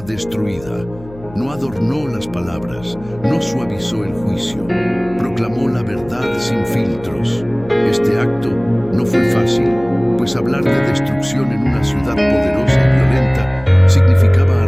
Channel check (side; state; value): left; noise; hum, 19 dB below the sound